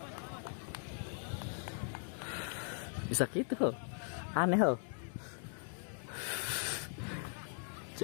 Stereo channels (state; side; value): silent; right; 51 dB below the other